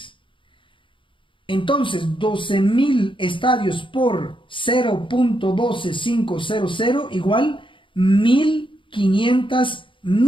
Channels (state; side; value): late; right; 0.24 ms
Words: Entonces, 12,000 estadios por 0.12500 igual 1,500